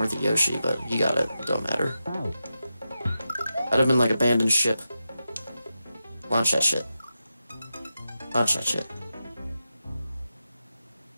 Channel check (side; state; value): both; inverted; correlation -0.90